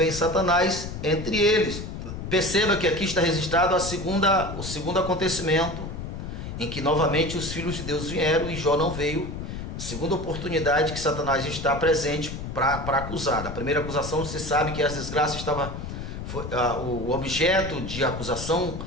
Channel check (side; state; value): left; noise; rumble, 7 dB below the sound